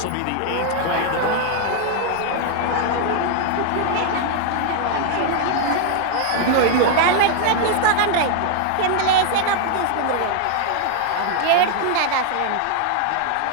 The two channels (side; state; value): both; different; correlation 0.00